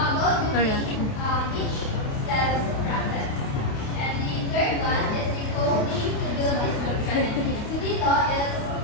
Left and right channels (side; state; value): right; late; 29 ms